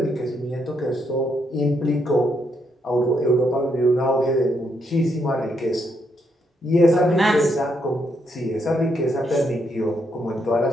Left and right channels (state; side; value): normal; both; correlation 0.76